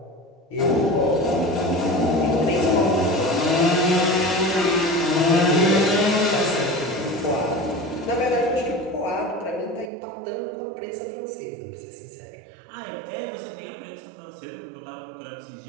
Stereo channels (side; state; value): left; drops out; at 9.9 s